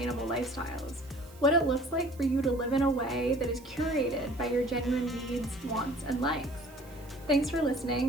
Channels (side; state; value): right; noise; hiss, 24 dB below the sound